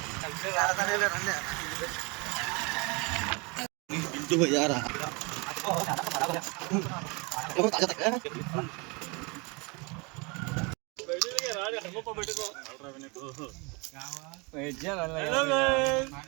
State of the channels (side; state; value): left; quieter; 29.2 dB